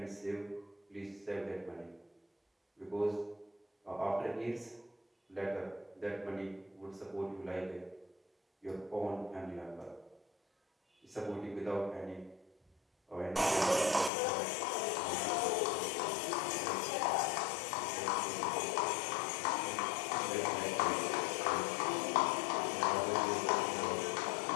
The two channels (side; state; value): right; drops out; at 14.1 s